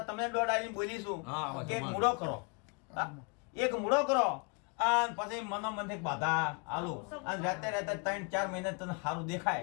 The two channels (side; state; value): right; quieter; 33.6 dB